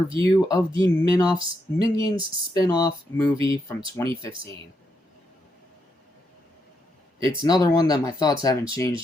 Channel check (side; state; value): both; normal; correlation 0.80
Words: of the Minions spin-off movie from 2015. It's another one that my thoughts haven't